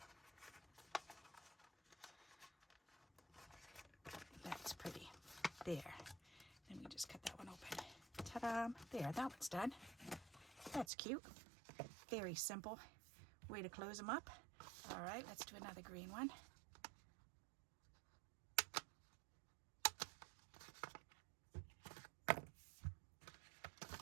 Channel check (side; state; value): left; drops out; at 10.9 s